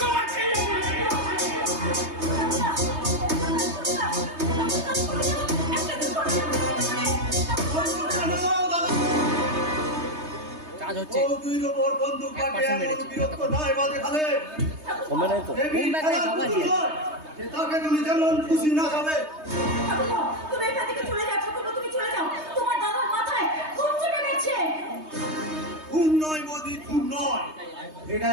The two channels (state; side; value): late; left; 3.2 ms